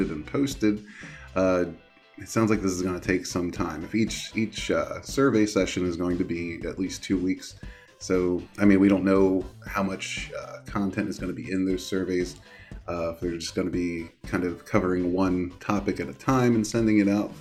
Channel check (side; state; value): both; identical; correlation 1.00